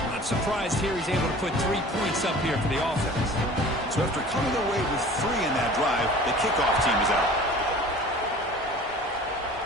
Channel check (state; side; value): normal; both; correlation 0.44